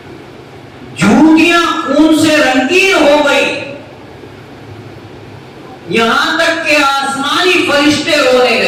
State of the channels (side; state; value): both; identical; correlation 1.00